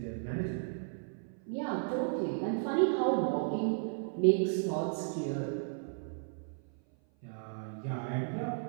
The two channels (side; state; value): left; silent; 55 dB below the other